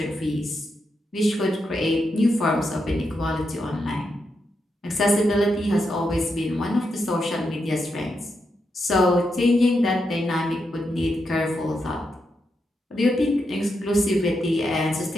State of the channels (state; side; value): normal; both; correlation 0.84